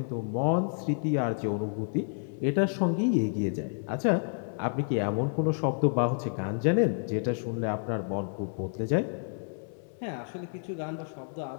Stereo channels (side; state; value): right; silent; 58 dB below the other